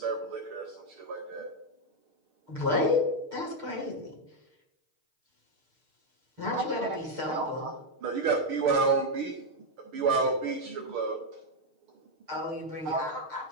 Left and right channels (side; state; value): left; late; 6.5 ms